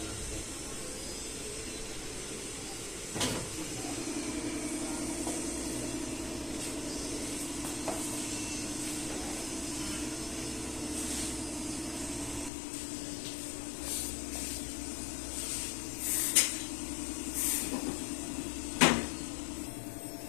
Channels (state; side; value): drops out; right; at 12.5 s